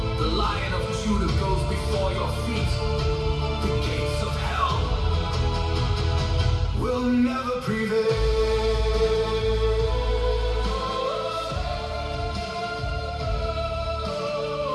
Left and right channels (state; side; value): identical; both; correlation 1.00